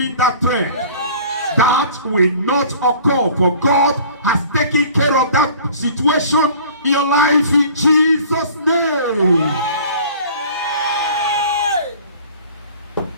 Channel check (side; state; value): both; inverted; correlation -0.48